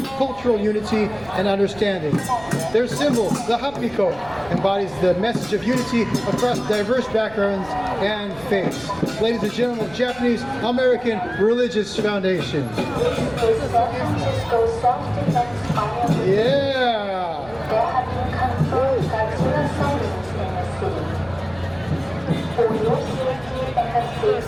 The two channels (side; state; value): right; noise; rumble, 22 dB below the sound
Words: cultural unity and understanding. Their symbol, the hapiko, embodies the message of unity across diverse backgrounds and faiths. Ladies and gentlemen, Japanese American Religious Foundation. Yeah! There have been confirmed that suicide incidents in the city. For your safety and the